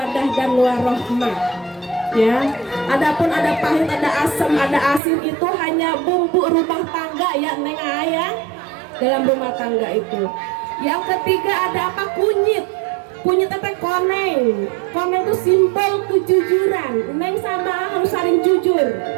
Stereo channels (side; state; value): left; drops out; at 5.0 s